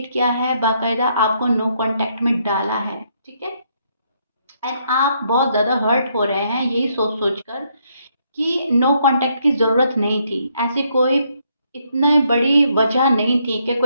किया है, बाकायदा आपको नो कांटेक्ट में डाला है, ठीक है। एंड आप बहुत ज़्यादा हर्ट हो रहे हैं यही सोच सोच कर कि नो कांटेक्ट की ज़रूरत नहीं थी, ऐसी कोई इतनी बड़ी वजह नहीं थी कि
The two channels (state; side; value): inverted; both; correlation -0.73